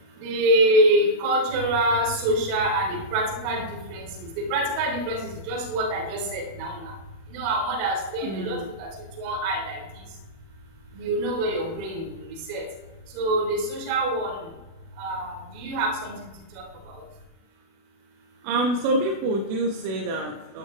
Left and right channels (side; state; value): left; late; 36 ms